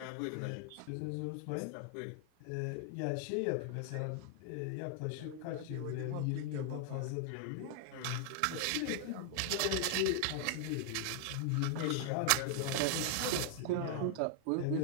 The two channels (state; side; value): different; both; correlation 0.00